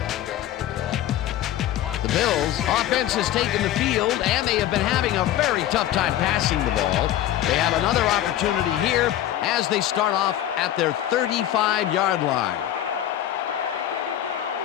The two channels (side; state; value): right; quieter; 12.4 dB